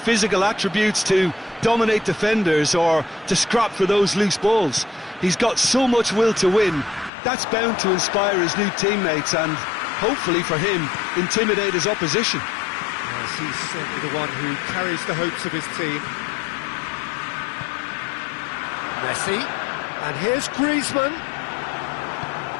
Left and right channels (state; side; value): drops out; right; at 7.1 s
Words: attributes to dominate defenders or to scrap for those loose balls. He's got so much will to win. That's bound to inspire his new teammates and, hopefully for him, intimidate his opposition. Yes, he's certainly the one who carries the hopes of his team. Messi, and here's Griezmann.